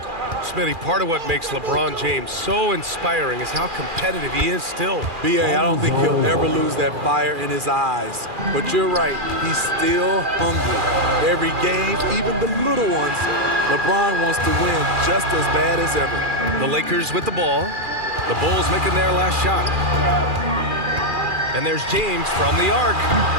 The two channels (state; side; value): late; left; 2.4 ms